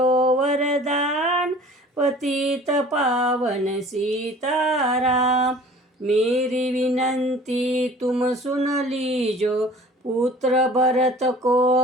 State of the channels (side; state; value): both; normal; correlation 0.47